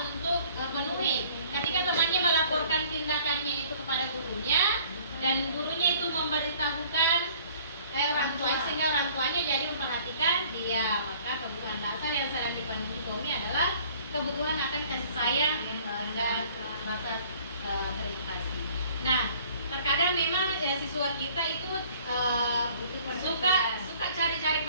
untuk penuhi. Ketika temannya melaporkan tindakannya itu kepada gurunya dan gurunya itu memberitahukan orang tua, sehingga orang tuanya jadi memperhatikan dia, maka kebutuhan dasar yang sedang dipenuhi Tommy adalah kebutuhan akan kasih sayang dan rasa terima kasih. Nah, terkadang memang siswa kita itu suka cari-cari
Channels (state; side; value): inverted; both; correlation -0.55